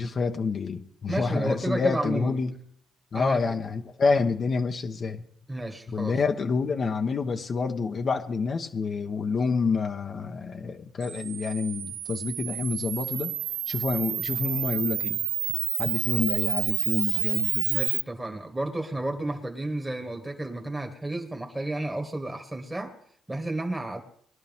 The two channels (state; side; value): normal; both; correlation 0.76